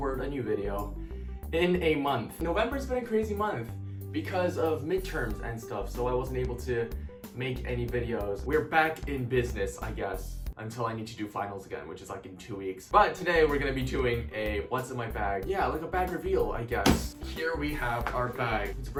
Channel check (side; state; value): both; identical; correlation 1.00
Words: a new video in a month. November's been a crazy month because of midterms and stuff, so I wasn't able to make any videos. We're back in business, I guess, until I need to do finals again, which is like in 2 weeks. But today we're gonna be doing a what's in my bag. Yeah, like a bag reveal, I guess. Here we have our bag. It's a